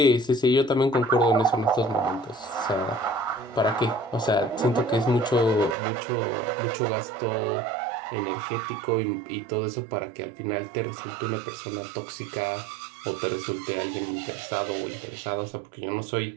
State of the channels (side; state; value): left; drops out; at 5.8 s